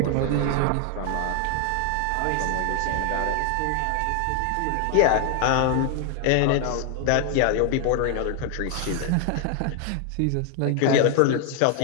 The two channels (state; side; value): different; both; correlation 0.00